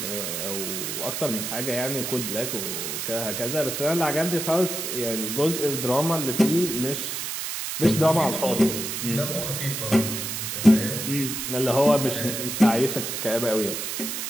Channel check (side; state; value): right; noise; hiss, 4 dB below the sound